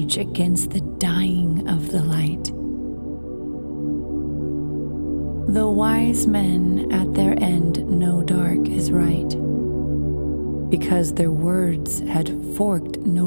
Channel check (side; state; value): both; inverted; correlation -1.00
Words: against the dying of the light. The wise men at their end know dark is right, because their words had forked